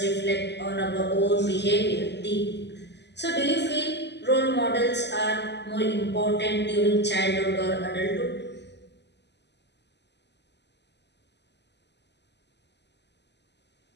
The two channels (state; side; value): late; right; 0.50 ms